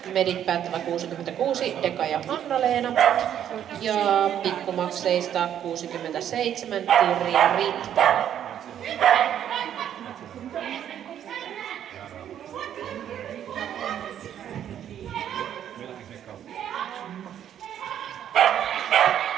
medit päättävä 66 Deka ja Anna-Leena ja pikkumakseista 67 Tirja Ritta.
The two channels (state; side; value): quieter; left; 10.0 dB